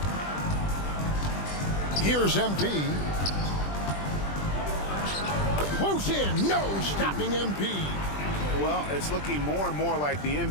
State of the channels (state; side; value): late; right; 20 ms